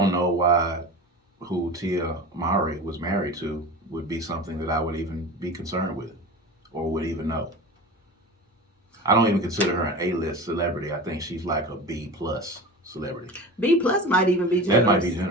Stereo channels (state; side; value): normal; both; correlation 0.32